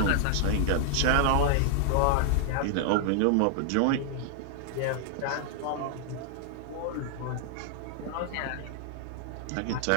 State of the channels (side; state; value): both; different; correlation -0.01